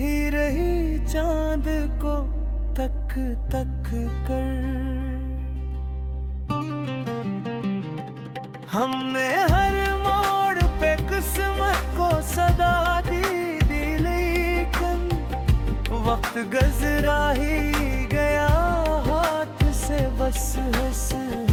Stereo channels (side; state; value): both; identical; correlation 1.00